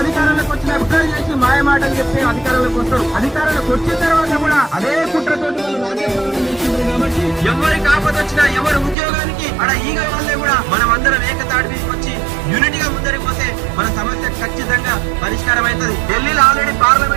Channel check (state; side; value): drops out; left; at 9.0 s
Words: వచ్చిన కుట్ర చేసి మాయమాటలు చెప్పి అధికారంలోకి వస్తారు. అధికారంలోకి వచ్చిన తర్వాత కూడా అదే కుట్రతోటి వాళ్ళు రాజ్యపాలన చేస్తున్నారు. కాబట్టి ఎవరికి ఆపద వచ్చినా ఎవరి ఉద్యోగానికి అక్కడ ఈగ వాళ్ళే కూడా మనం అందరం ఏకతాటి మీదకి వచ్చి యూనిటీగా ముందరికి పోతే మన సమస్య ఖచ్చితంగా పరిష్కారం అవుతుంది. ఢిల్లీలో ఆల్రెడీ